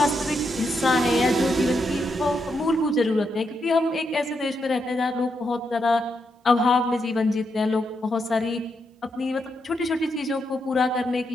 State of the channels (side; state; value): both; normal; correlation 0.82